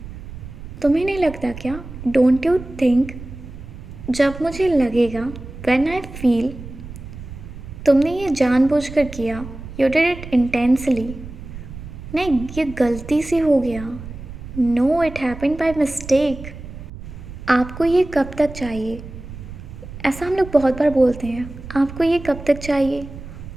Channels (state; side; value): noise; right; rumble, 13 dB below the sound